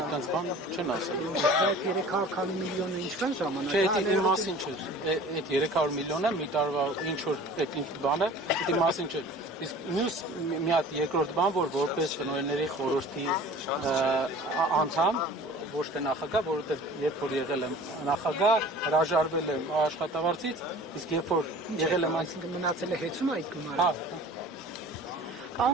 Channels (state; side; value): normal; both; correlation 0.44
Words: բան չեն ասել։ Այդ 300 քանի միլիոնը ինչքան ժամանակ։ Չէ, դա իմ մասին չէ։ Այդ 300 միլիոնը մի տարվա ինչ որ այդ ինչ բանը, դա իմ մասին չէ։ Իսկ մյուս մի հատ երկրորդ բան, որ որպես տնօրենների խորհրդի անդամ ոչ թե նախագահ, որովհետև երբ որ եղել եմ նախագահ, հրաժարվել եմ աշխատավարձից, իսկ երբ որ եղել եմ, այսինքն մնացել է հեծում այդ գումարը։ Հա։